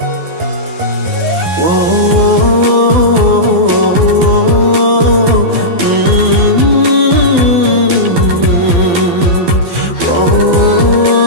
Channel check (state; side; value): late; left; 12 ms